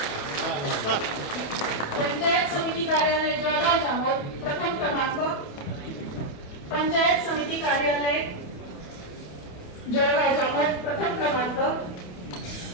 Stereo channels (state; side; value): late; right; 28 ms